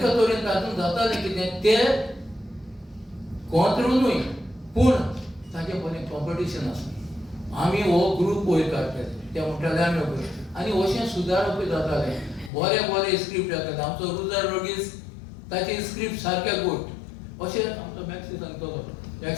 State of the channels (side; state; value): right; drops out; at 12.5 s